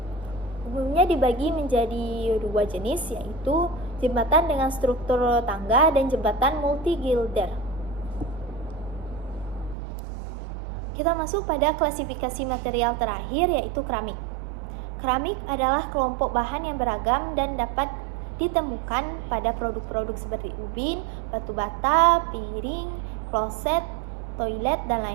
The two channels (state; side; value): drops out; left; at 9.8 s